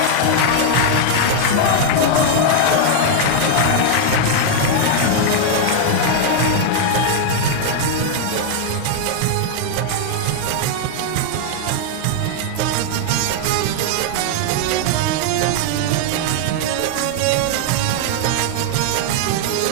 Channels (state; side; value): different; both; correlation 0.00